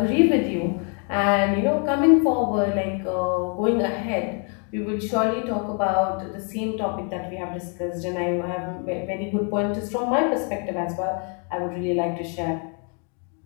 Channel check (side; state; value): right; quieter; 39.6 dB